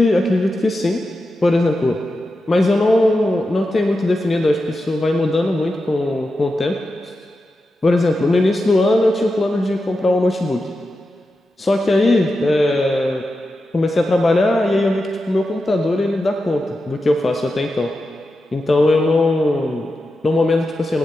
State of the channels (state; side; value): normal; both; correlation 0.90